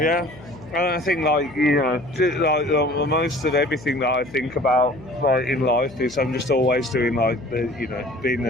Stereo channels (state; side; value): noise; left; hum, 19 dB below the sound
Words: And I think, like, you know, like most of everything that I think about, like, in life is I'm just always doing, like, doing